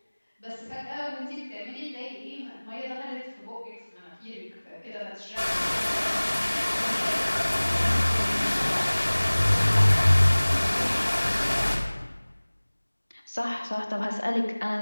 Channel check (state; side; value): inverted; both; correlation -1.00